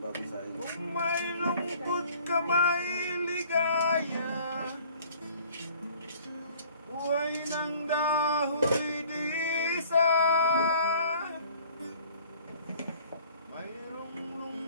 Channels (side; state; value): both; inverted; correlation -0.52